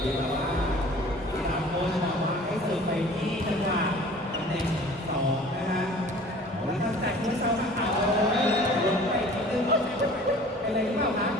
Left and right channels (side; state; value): both; normal; correlation 0.47